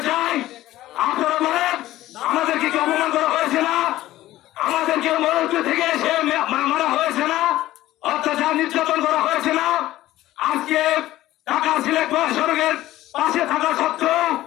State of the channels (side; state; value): right; quieter; 15.4 dB